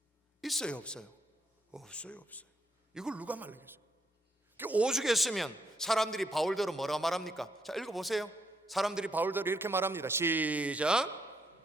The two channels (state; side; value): normal; both; correlation 0.75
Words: 있어요, 없어요? 없어요. 이걸 누가 말리겠어요? 오죽했으면 사람들이 바울대로 뭐라 말합니까? 자, 읽어보세요. 사람들이 바울대로 이렇게 말합니다. 시작.